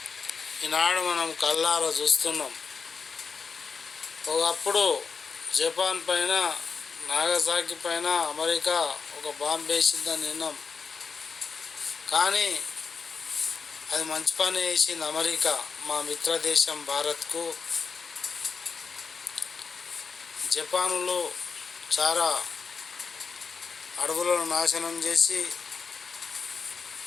ఈనాడు మనం కళ్ళారా చూస్తున్నాం. ఒకప్పుడు జపాన్ పైన, నాగసాకి పైన అమెరికా ఒక బాంబు వేసిందని విన్నాం. కానీ అది మంచి పని వేసింది అమెరికా మా మిత్రదేశం భారత్కు. జపానులో చాలా అడవులను నాశనం చేసి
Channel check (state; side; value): quieter; right; 5.3 dB